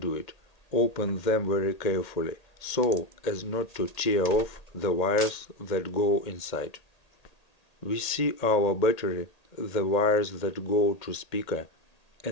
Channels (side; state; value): right; late; 1.8 ms